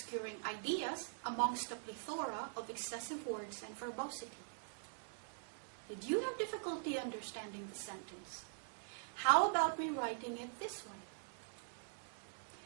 ideas amongst a plethora of excessive words and verbosity. Did you have difficulty understanding the sentence? How about rewriting it this way?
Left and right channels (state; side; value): silent; left; digital silence